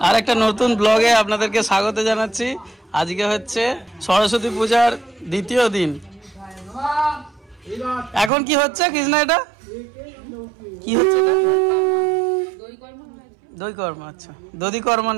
আর একটা নতুন ব্লগে আপনাদেরকে স্বাগত জানাচ্ছি। আজকে হচ্ছে সরস্বতী পূজার দ্বিতীয় দিন। এখন কি হচ্ছে কৃষ্ণা? এটা কি হচ্ছে? দই কর্ম। আচ্ছা, দধি কর্ম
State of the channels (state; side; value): drops out; left; at 8.3 s